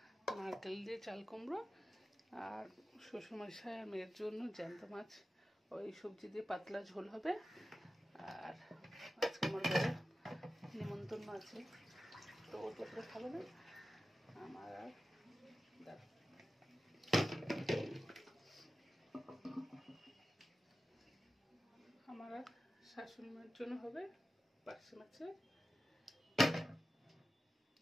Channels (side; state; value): both; normal; correlation 0.93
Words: নারকেল দিয়ে চাল কুমড়ো, আর শ্বশুরমশাই আর মেয়ের জন্য জ্যান্ত মাছ, ওই সবজি দিয়ে পাতলা ঝোল হবে। আর আজকে আমার ঘরে নিমন্ত্রণ আছে, তো ও তো করে খাবে না, আমার আর আমার আর শাশুড়ি মায়ের জন্য হবে পার্শে